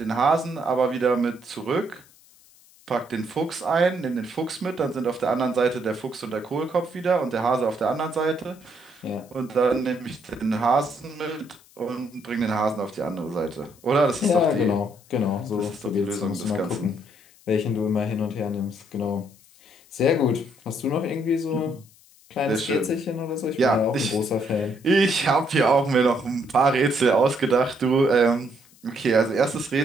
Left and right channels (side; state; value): left; noise; hiss, 27 dB below the sound